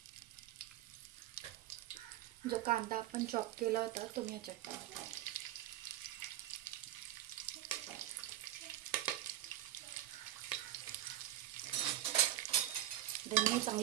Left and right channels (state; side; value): quieter; left; 13.6 dB